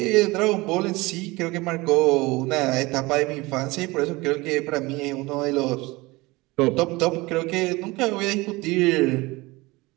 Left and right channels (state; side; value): quieter; left; 22.3 dB